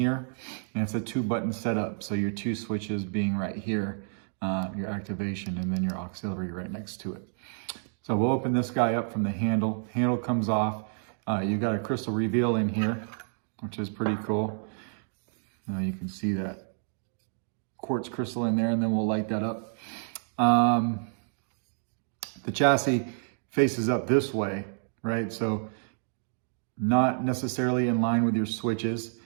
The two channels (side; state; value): left; silent; digital silence